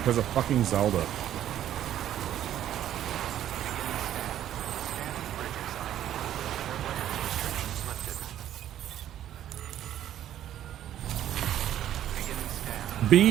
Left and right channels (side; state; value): left; quieter; 11.5 dB